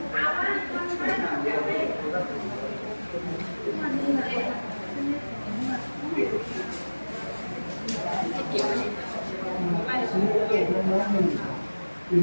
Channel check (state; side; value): inverted; both; correlation -1.00